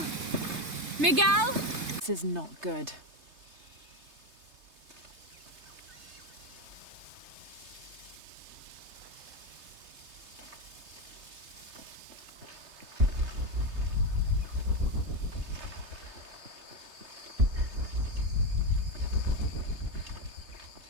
Miguel? This is not good.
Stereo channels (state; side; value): late; left; 3.3 ms